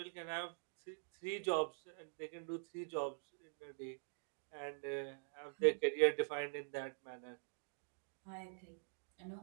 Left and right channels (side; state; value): left; silent; digital silence